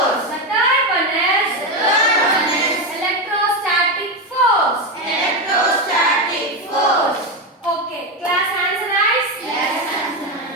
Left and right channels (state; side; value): normal; both; correlation 0.12